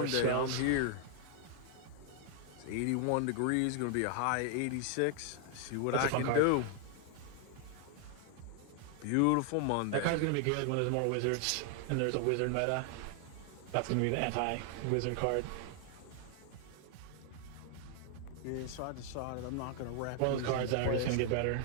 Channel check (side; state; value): both; different; correlation 0.00